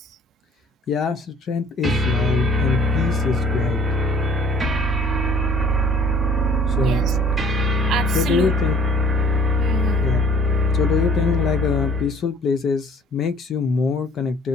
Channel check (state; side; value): normal; both; correlation 0.54